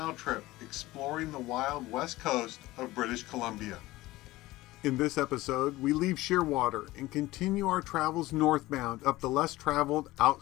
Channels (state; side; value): quieter; right; 18.2 dB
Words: trip exploring the wild west coast of British Columbia. In this episode, we leave Shearwater and continue our travels northbound up the less traveled